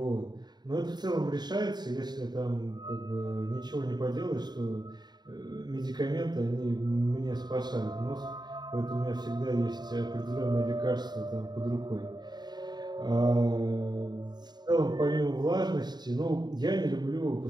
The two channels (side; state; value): left; late; 0.20 ms